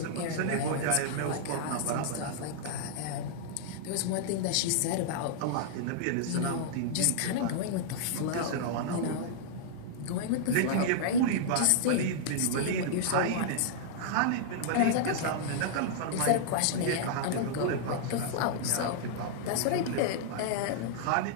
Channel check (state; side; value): different; both; correlation -0.01